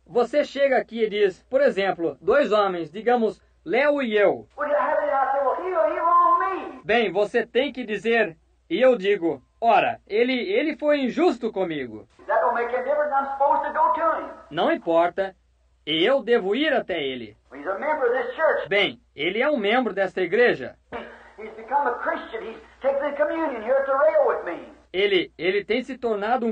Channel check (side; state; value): both; identical; correlation 1.00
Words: Você chega aqui e diz, por exemplo, dois homens, digamos, Léo e eu. Well, you have it, and I say, well, he wronged me. Bem, você tem que dizer, e eu digo, ora, ele foi injusto comigo. That don't make any difference. I'm supposed to go to him. Não importa, e eu devo ir até ele. He's a member of this church. Bem, ele é um membro desta igreja. He's become a Christian. He's taken the communion here at the rail with me. Ele tem se tornado